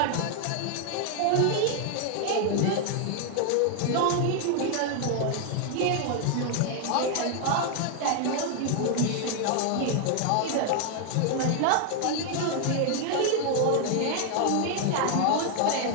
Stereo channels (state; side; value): different; both; correlation 0.00